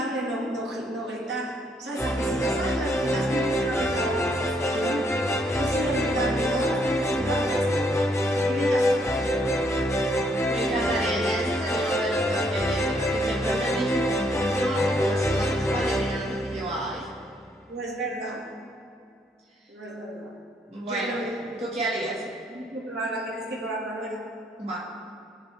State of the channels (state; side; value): normal; both; correlation 0.71